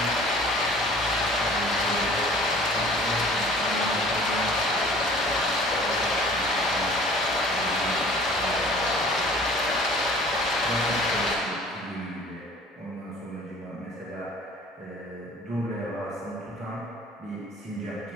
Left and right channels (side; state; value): both; normal; correlation 0.49